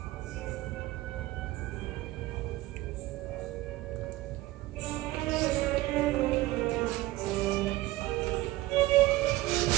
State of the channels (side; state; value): left; quieter; 17.7 dB